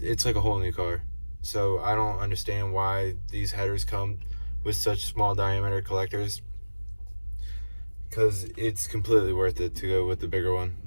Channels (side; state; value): both; inverted; correlation -1.00